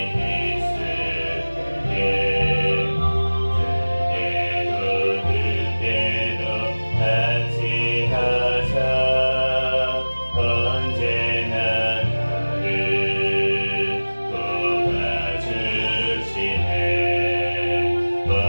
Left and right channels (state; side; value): inverted; both; correlation -1.00